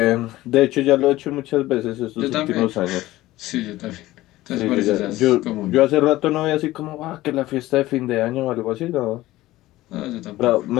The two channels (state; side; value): quieter; right; 16.9 dB